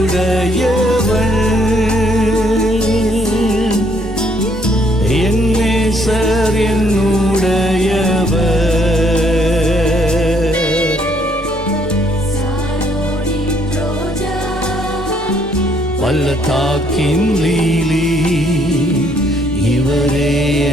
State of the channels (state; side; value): normal; both; correlation 0.68